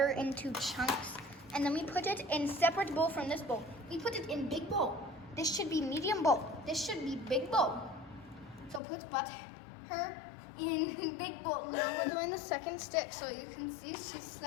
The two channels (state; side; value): drops out; right; at 8.8 s